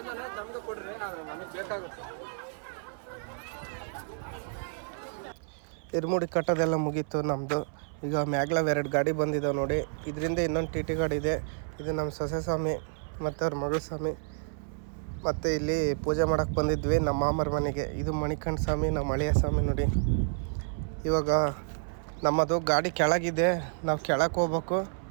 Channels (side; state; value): left; silent; 58 dB below the other